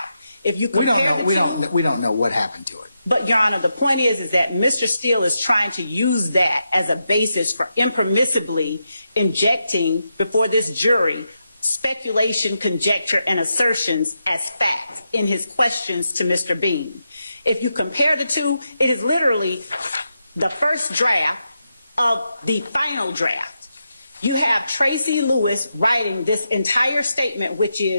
If you compare we don't know what happened to it. But Your Honor, the point is that Mr. Steele is trying to use that as a basis for impermissibly injecting before this jury speculation, conjecture, and assertions as fact in his questions to Mr. Bean. If you compare the two, it is literally the first draft of the final draft. You have Tracy Lewis writing this entire statement, which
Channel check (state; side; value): inverted; both; correlation -0.86